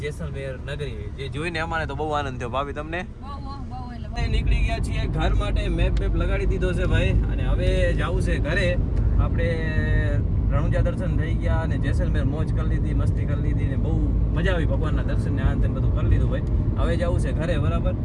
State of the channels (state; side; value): identical; both; correlation 1.00